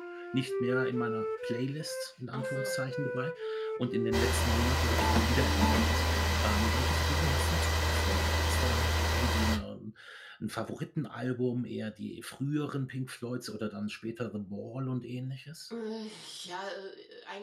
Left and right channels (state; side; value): identical; both; correlation 1.00